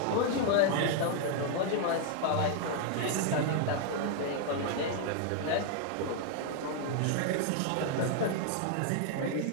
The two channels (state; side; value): different; both; correlation 0.00